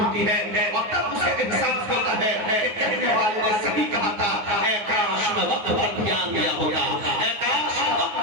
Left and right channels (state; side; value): late; left; 9.4 ms